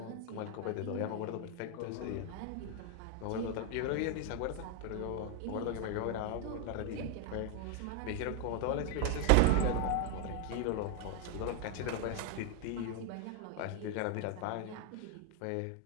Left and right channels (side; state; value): both; different; correlation 0.01